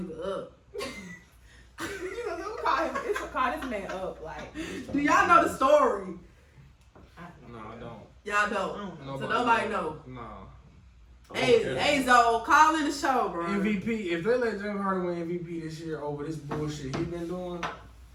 up? You know, we call him. It's call this man up. Like, Do y'all know the story? No, I don't. Y'all don't. So Nobody nobody know. No. Hey, Zoe, call in the show, bro. MVP, if they let James Harden win MVP this year over this bullshit he been doing,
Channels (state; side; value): identical; both; correlation 1.00